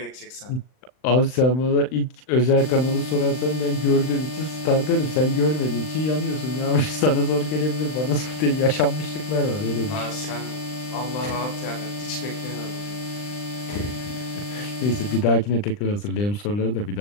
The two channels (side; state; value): right; late; 39 ms